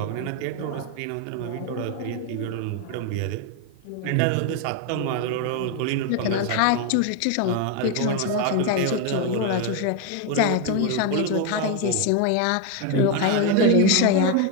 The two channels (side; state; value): both; different; correlation 0.01